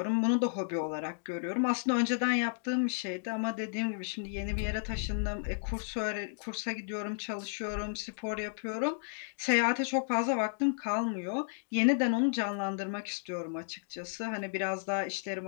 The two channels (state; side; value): silent; right; digital silence